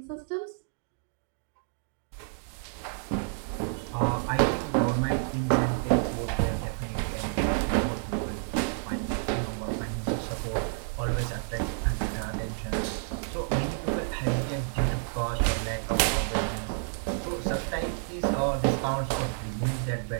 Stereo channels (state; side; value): silent; left; digital silence